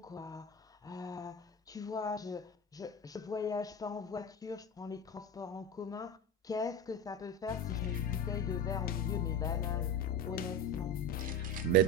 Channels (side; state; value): both; normal; correlation 0.24